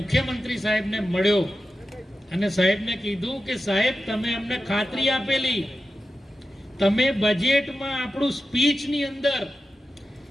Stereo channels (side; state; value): both; normal; correlation 0.92